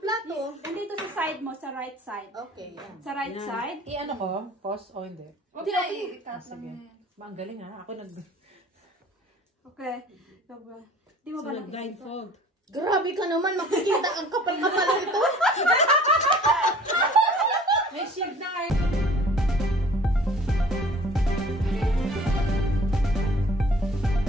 Nandito sa side mo, sa right side. Okay, yan. Sa right side. I-ano ko? Pause o hindi? Huwag na i-cut lang yan. Ang galing ha. Ako Okay. So, di mo ba Blindfold. Grabe ka naman, makikita ang kapal-kapal ito. May shield na kayo.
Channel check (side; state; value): both; normal; correlation 0.50